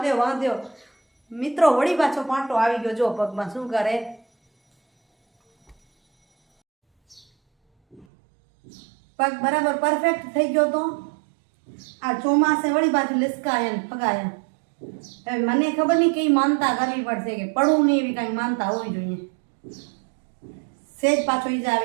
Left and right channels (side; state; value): left; drops out; at 8.1 s